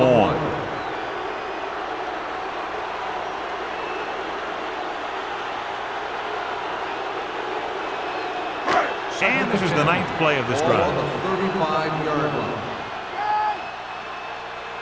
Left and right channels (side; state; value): both; identical; correlation 1.00